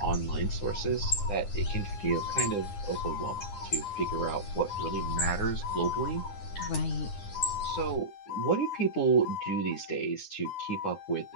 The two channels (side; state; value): right; late; 9.8 ms